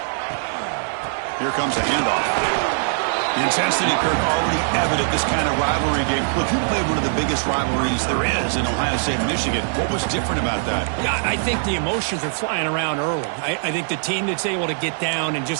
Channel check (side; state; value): left; silent; digital silence